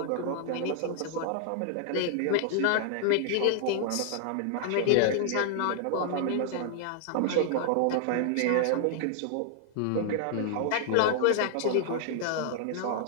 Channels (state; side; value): different; both; correlation 0.00